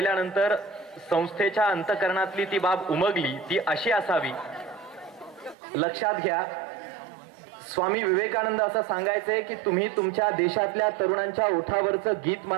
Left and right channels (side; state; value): left; drops out; at 5.6 s